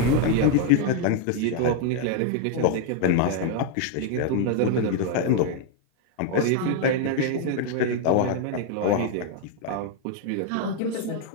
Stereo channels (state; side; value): different; both; correlation 0.00